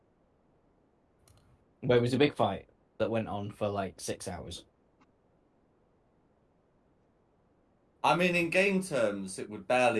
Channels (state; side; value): identical; both; correlation 1.00